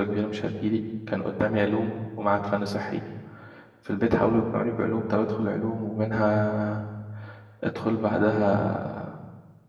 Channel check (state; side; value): identical; both; correlation 1.00